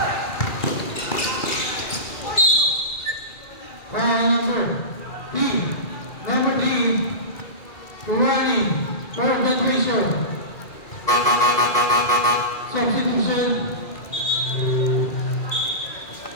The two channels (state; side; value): late; right; 2.4 ms